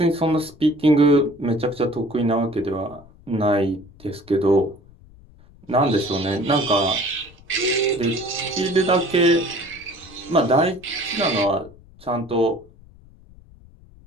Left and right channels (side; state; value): left; noise; rumble, 24 dB below the sound